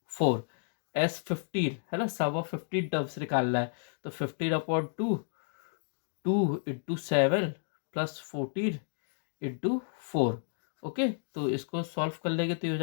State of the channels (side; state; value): right; silent; digital silence